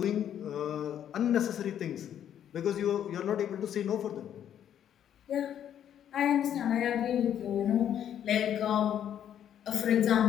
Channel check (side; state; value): right; quieter; 9.9 dB